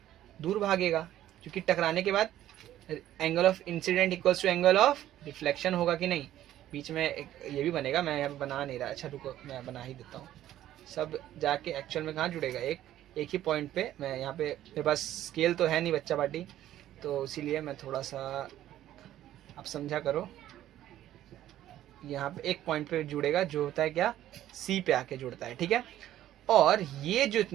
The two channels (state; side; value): quieter; left; 12.8 dB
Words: दूर भागेगा, क्योंकि टकराने के बाद angle of incidence equals to angle of reflection होगा कि नहीं? बीच में एक ये भी बनेगा, मैं यहाँ बना नहीं रहा। अच्छा रुको, मैं बना ही देता हूँ। सब जाके एक्चुअल में कहाँ जुड़ेगा? एक एक ही पॉइंट पे मैं यहाँ पे, मेरे पास स्केल तो है नहीं बच्चा पार्टी, तो इसीलिए मैं थोड़ा सा, आप समझा करो, यहाँ पे एक पॉइंट पे जुड़ेगा जो होता है क्या, सी पे आके जुड़ता है, ठीक है। और ये जो